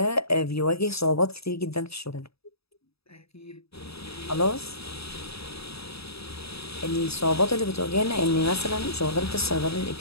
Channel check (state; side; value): late; right; 0.77 ms